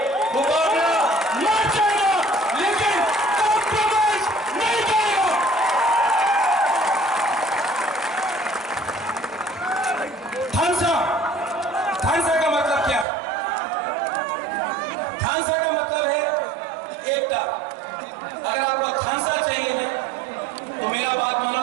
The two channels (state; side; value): drops out; left; at 13.1 s